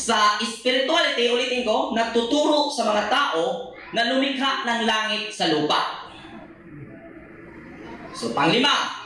spirituality, ulitin ko, nagtuturo sa mga tao na lumikha ng langit sa lupa. So, panglima,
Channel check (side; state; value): both; identical; correlation 1.00